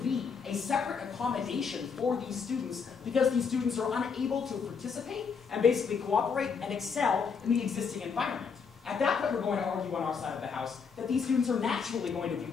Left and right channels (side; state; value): right; quieter; 5.9 dB